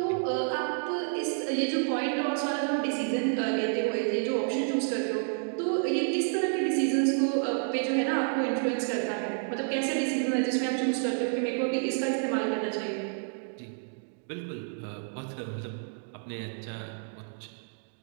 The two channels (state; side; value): silent; left; 58 dB below the other